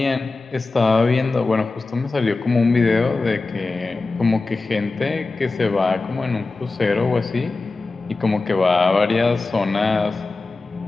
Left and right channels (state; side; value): quieter; right; 3.6 dB